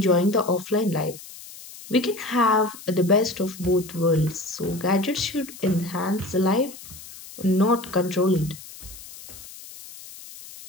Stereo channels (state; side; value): noise; left; hiss, 16 dB below the sound